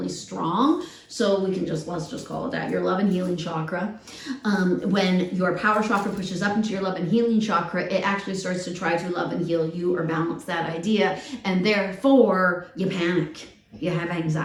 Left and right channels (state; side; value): identical; both; correlation 1.00